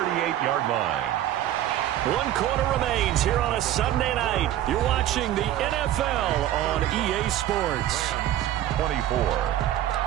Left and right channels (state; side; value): quieter; left; 12.6 dB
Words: line. 1 quarter remains here on a Sunday night. You're watching the NFL on EA Sports. 24.